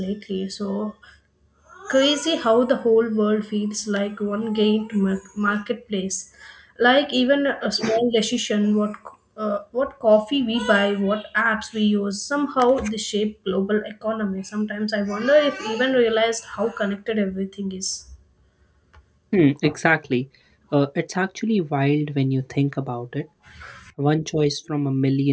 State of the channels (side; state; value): both; identical; correlation 1.00